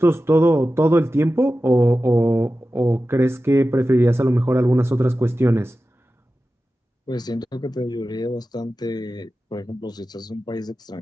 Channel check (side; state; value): both; normal; correlation 0.94